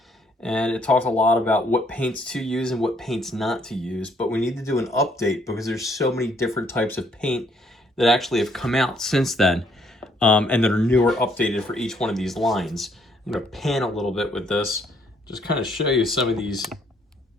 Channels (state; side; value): normal; both; correlation 0.67